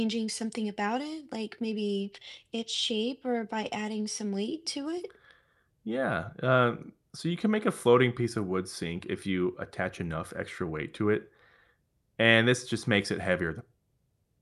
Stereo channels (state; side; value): identical; both; correlation 1.00